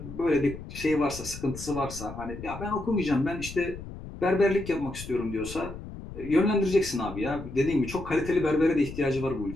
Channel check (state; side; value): noise; left; rumble, 12 dB below the sound